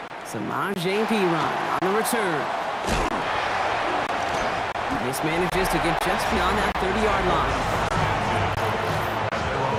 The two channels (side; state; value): both; identical; correlation 1.00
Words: Samaje Perine on the return. This manages to get just beyond that 30-yard line.